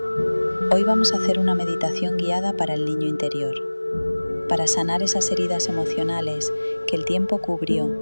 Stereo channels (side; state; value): both; inverted; correlation -1.00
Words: Hoy vamos a hacer una meditación guiada para el niño interior, para sanar esas heridas emocionales que el tiempo